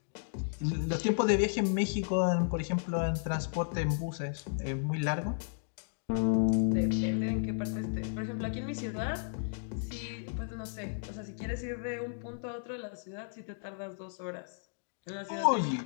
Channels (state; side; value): silent; right; digital silence